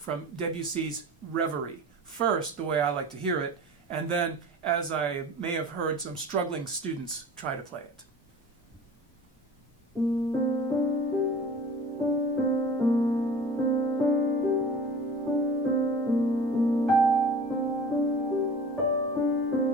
Debussy's Reverie. First, the way I like to hear it, and then, as I may have heard some struggling students try to play it.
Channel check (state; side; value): normal; both; correlation 0.40